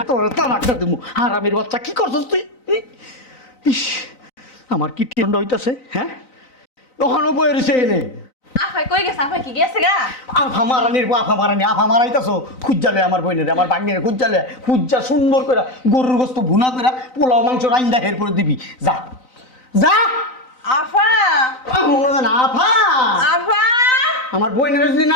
তোর তালাকটা দেবো। আর আমির বাচ্চা কি করছস তুই? ইস আমার কি টিন্ড হইতাছে। হ্যাঁ ওখানেও বয়ে রয়েছে এনে আফাই কই গেছে? আফাই কি গেছে গা? আফা মারানির আফা মারানি, আফা মারাইতাছো খুঁজালে আমার বইনের, আমার বাগনের খুঁজালে, খুঁজা সুন্দর করে গরুর গোস্ত ভুনা করে পোলাও মাংস রাইন্দা এরপরে দিবি। যা যা। আফা, মনে হয় না আফা, আফা, আমার বইনের যদি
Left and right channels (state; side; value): late; right; 3.9 ms